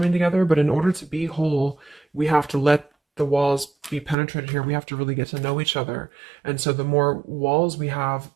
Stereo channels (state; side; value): drops out; left; at 4.2 s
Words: together. But in order to be whole, we have to let the walls be penetrated here. We have to really get to know each other. And so the more walls we have